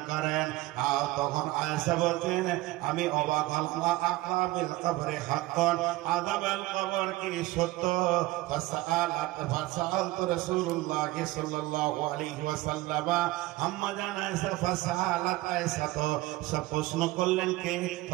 করেন। আর তখন আয়েশা বলছেন, আমি অবাক হলাম, আযাবিল কবরে হাক্কান, আযাবাল কবর কি সত্য? ফাসাআলতু রাসূলুল্লাহ সাল্লাল্লাহু আলাইহি ওয়াসাল্লাম, আম্মা জান আয়েশা ফাসাআলাত আয়েশা, তো সব প্রশ্ন করলেন কে?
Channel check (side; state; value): left; quieter; 18.5 dB